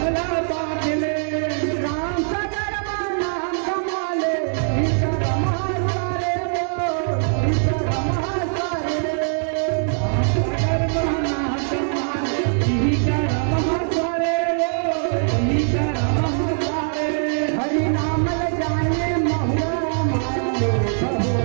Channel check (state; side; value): silent; left; 64 dB below the other